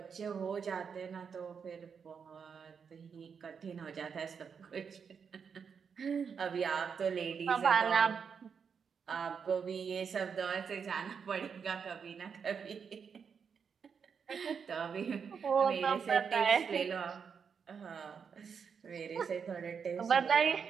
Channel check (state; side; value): quieter; left; 6.4 dB